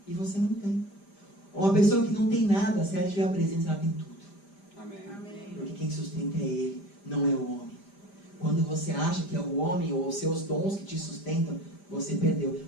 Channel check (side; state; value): right; late; 5.0 ms